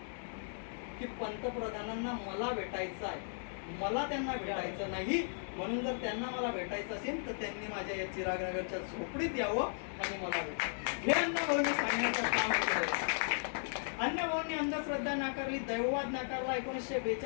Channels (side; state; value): right; silent; digital silence